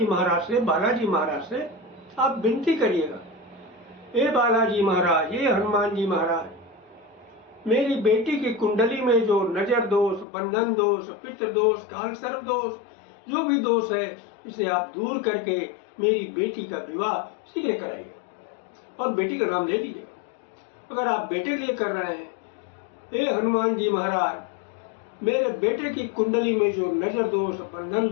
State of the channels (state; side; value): drops out; right; at 10.2 s